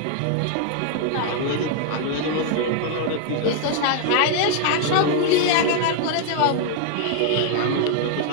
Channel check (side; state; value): both; different; correlation 0.00